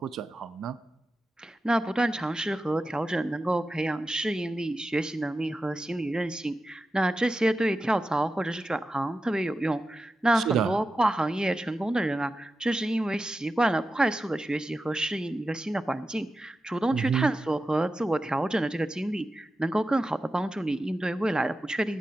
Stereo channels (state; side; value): normal; both; correlation 0.91